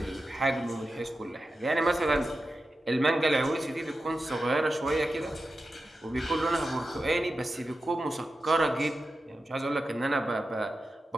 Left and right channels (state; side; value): normal; both; correlation 0.91